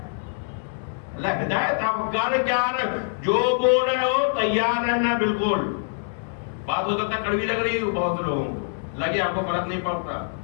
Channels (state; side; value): silent; right; 62 dB below the other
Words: اللہ ہدایت آپ کر کیا رہے، جو بول رہے ہو تیار رہنا. بالکل بات ہو سکتا ہے کڑوی لگ رہی ہے بہت سے لوگوں کو، لگے آپ کو فرق نہیں پڑتا